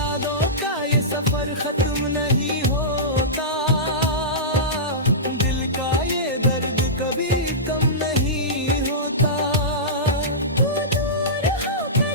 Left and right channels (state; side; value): normal; both; correlation -0.17